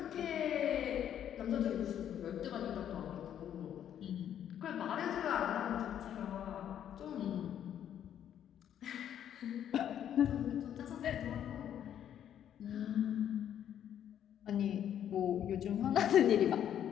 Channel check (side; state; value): right; quieter; 10.0 dB